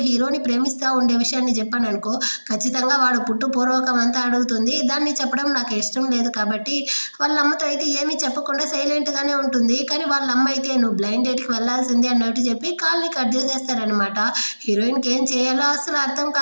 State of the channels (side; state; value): both; inverted; correlation -1.00